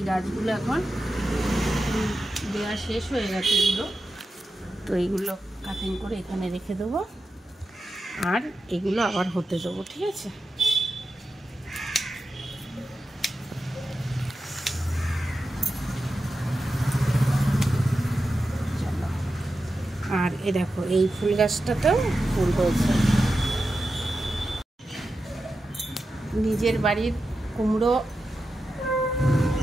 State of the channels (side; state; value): both; normal; correlation 0.91